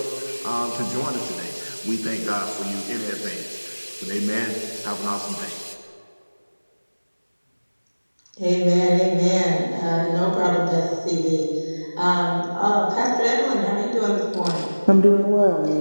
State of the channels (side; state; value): both; inverted; correlation -1.00